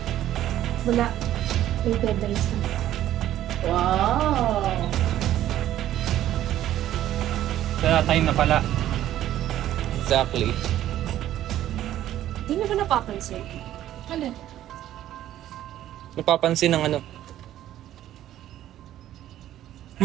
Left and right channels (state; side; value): quieter; left; 12.6 dB